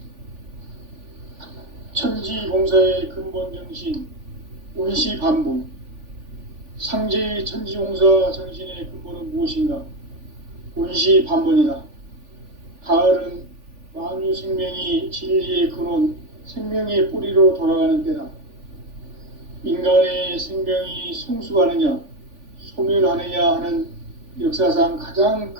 천지공사의 근본 정신 원시반본, 상제의 천지공사 정신의 근본은 무엇인가? 원시반본이다. 가을은 만유 생명이 진리의 근원, 생명의 뿌리로 돌아가는 때다. 인간의 생명이 성숙하느냐, 소멸하느냐 하는 역사상 가장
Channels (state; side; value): late; left; 3.4 ms